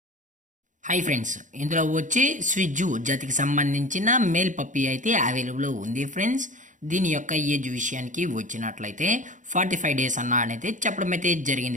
Hi friends, ఇందులో వచ్చి స్విజ్జు జాతికి సంబంధించిన మేల్ పప్పీ అయితే అవైలబుల్ ఉంది ఫ్రెండ్స్. దీని యొక్క ఏజ్ విషయానికి వచ్చినట్లయితే 45 డేస్ అయితే చెప్పడం అయితే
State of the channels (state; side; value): late; left; 0.37 ms